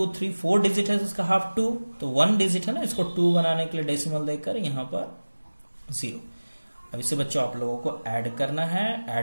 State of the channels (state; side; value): inverted; both; correlation -1.00